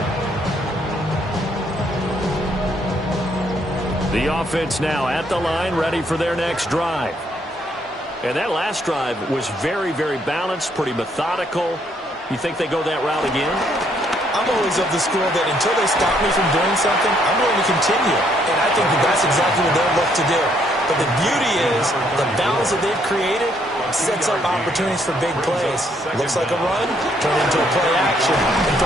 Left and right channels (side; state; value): both; normal; correlation 0.70